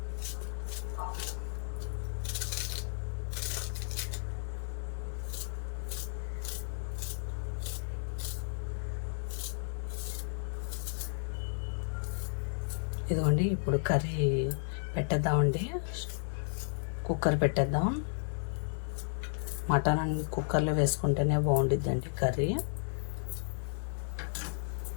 ఇదిగోండి. ఇప్పుడు కర్రీ పెట్టేద్దామండి. కుక్కర్ పెట్టేద్దాం. మటన్ కుక్కర్లో వేసుకుంటేనే బాగుండిద్దండి కర్రీ.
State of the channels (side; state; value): right; silent; digital silence